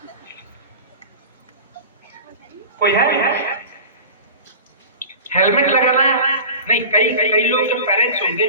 कोई है हेलमेट लगाना? नहीं, कई कई लोग जो पेरेंट्स होंगे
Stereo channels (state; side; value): inverted; both; correlation -0.35